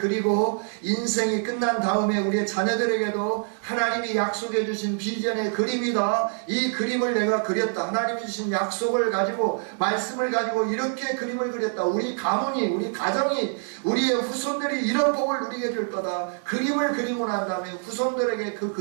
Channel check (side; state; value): left; silent; 58 dB below the other